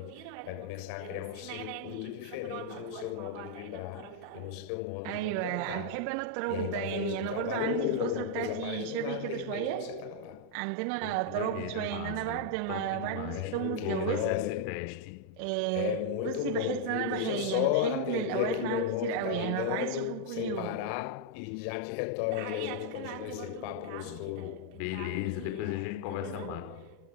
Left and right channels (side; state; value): both; different; correlation 0.00